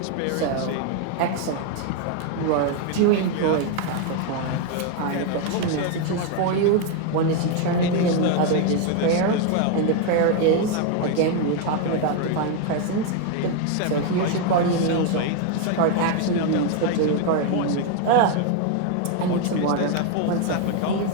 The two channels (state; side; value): different; both; correlation 0.01